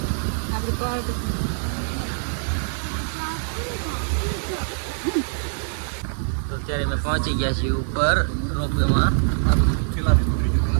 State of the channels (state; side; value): silent; left; digital silence